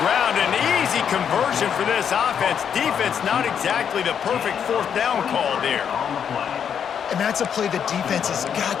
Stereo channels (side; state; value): right; quieter; 7.9 dB